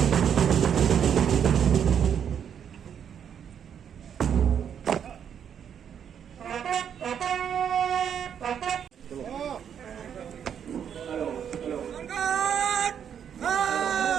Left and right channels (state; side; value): quieter; left; 8.4 dB